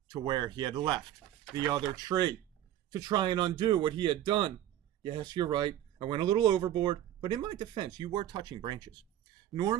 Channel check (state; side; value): quieter; left; 12.1 dB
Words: to where he had left the other tree to try and undo what he had done. Yes, you're right. I went a little overboard, but in my defense, you were touching branches.